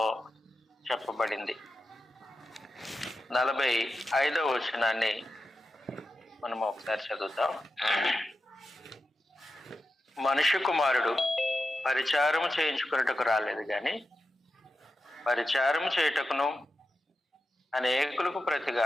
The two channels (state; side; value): normal; both; correlation 0.90